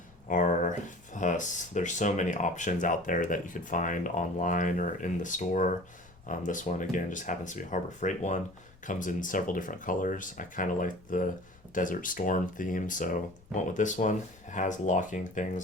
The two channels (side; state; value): left; noise; rumble, 25 dB below the sound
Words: are there's so many options out there that you could find online or in the store. This one again just happens to be a Harbor Freight one. Comes in several different colors. I kind of like the Desert Storm theme, so went with this one. It has locking things